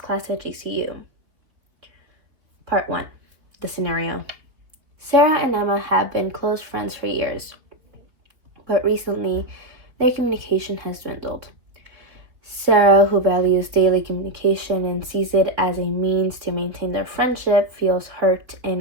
at GCU. Part 1. The scenario. Sarah and Emma have been close friends for years, but recently their communication has dwindled. Sarah, who values daily communication and sees it as a means to maintain their friendship, feels hurt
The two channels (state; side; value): late; left; 3.5 ms